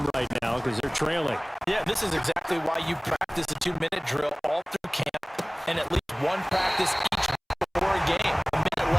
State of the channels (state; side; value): identical; both; correlation 1.00